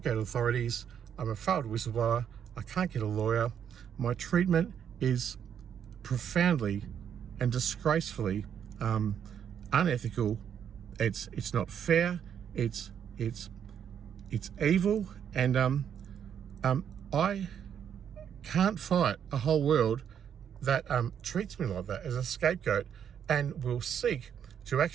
go to authorities. I'm a failed whistleblower. I can't get a lawyer. My treatment is profoundly and disgracefully unethical. It's not fair. It's evil, and I can't fight a whole world that treats me like that as a scapegoat and will seek to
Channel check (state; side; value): quieter; left; 8.5 dB